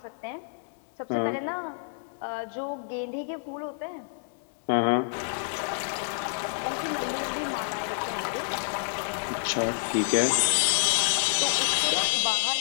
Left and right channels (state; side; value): silent; right; digital silence